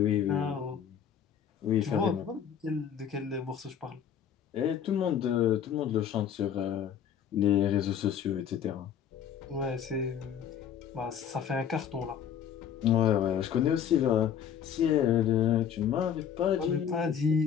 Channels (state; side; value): quieter; right; 8.5 dB